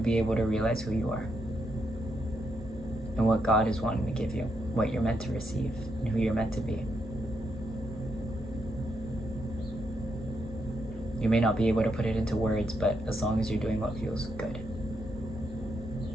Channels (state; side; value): normal; both; correlation 0.80